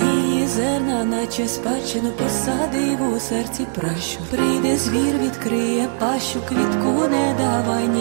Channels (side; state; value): left; silent; digital silence